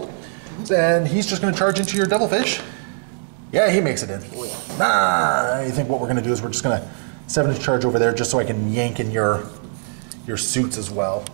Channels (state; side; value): silent; left; digital silence